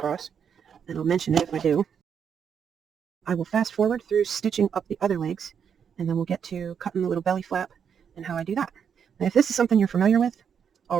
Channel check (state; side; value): quieter; left; 7.5 dB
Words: and I'll mention it if I do. I will fast forward through stitching up the other legs, and then we'll get to cutting the little belly flap and how I do that. Now, if this is something you're familiar with